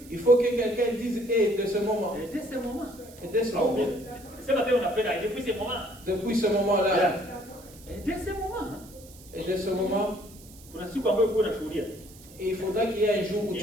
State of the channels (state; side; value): noise; right; hiss, 21 dB below the sound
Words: Il faut que quelqu'un dise et de ce moment. Et dès ce moment. Depuis ce moment-là. Et dès ce moment. Et il faudra qu'il y ait un jour où